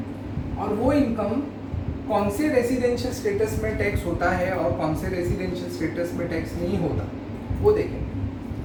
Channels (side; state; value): both; identical; correlation 1.00